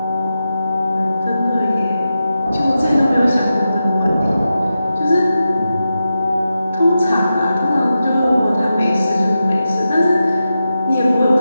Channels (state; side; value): inverted; both; correlation -0.90